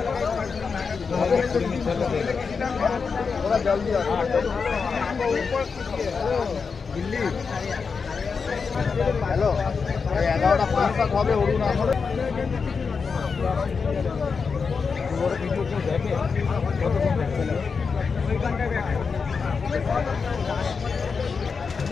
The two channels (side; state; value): right; quieter; 5.3 dB